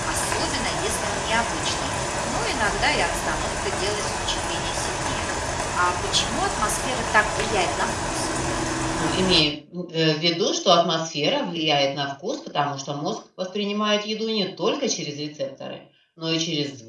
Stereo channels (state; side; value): identical; both; correlation 1.00